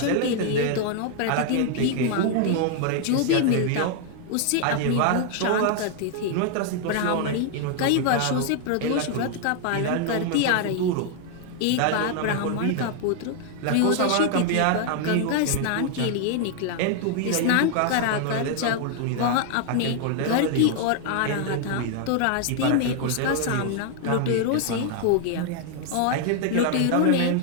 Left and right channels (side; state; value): both; different; correlation 0.00